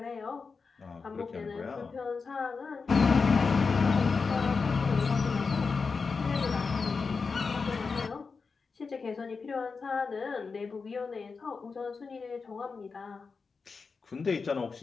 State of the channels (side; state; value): right; quieter; 4.8 dB